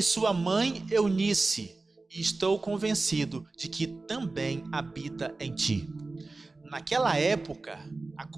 sua mãe Eunice, e estou convencido de que também habita em ti. Naquela época, a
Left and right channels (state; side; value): quieter; left; 3.4 dB